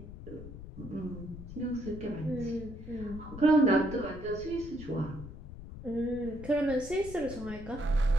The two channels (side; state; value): left; noise; rumble, 12 dB below the sound